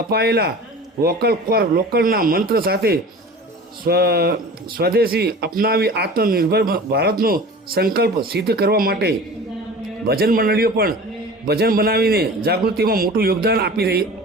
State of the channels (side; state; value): both; normal; correlation 0.39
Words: અપાયેલા વોકલ ફોર લોકલના મંત્ર સાથે સ્વદેશી અપનાવી આત્મનિર્ભર ભારતનો સંકલ્પ સિદ્ધ કરવા માટે ભજન મંડળીઓ પણ ભજન બનાવીને જાગૃતિમાં મોટું યોગદાન આપી